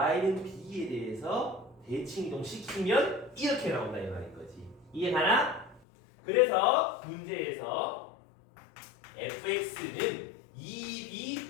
b에 대해서 대칭 이동시키면 이렇게 나온다 이 말인 거지. 이해가나? 그래서 문제에서 fx는 2b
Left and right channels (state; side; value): drops out; right; at 5.8 s